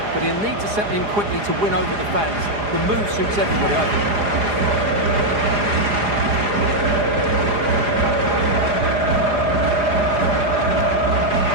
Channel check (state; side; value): late; left; 4.9 ms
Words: But he'll need to settle in quickly to win over the fans. The move suits everybody, I think.